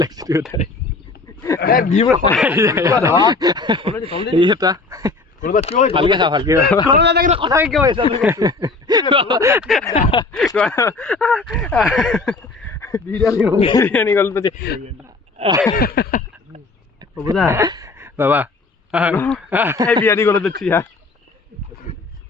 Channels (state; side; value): quieter; right; 3.7 dB